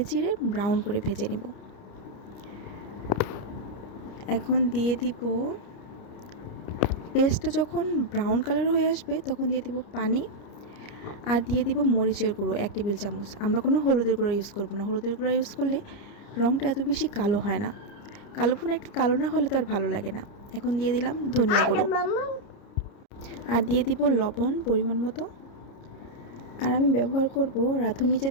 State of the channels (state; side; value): late; right; 30 ms